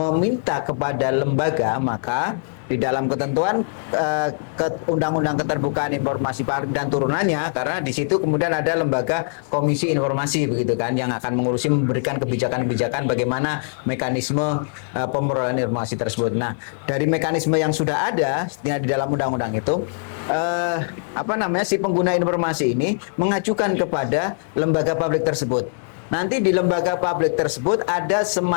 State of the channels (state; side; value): silent; right; digital silence